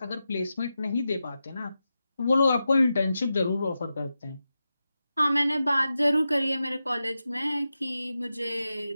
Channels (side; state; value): both; inverted; correlation -0.91